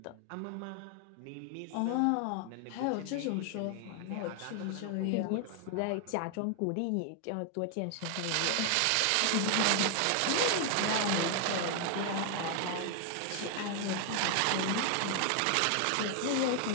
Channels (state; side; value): different; both; correlation 0.00